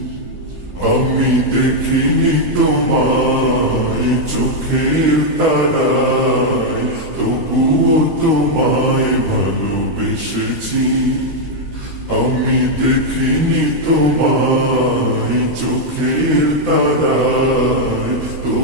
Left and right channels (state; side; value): late; left; 13 ms